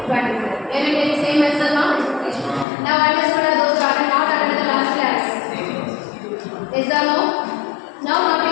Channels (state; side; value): drops out; right; at 2.7 s